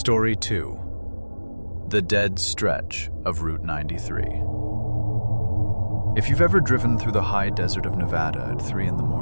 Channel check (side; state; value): both; inverted; correlation -1.00